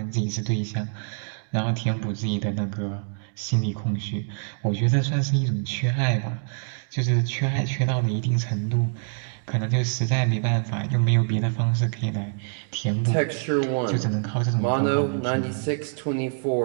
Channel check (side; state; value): left; silent; digital silence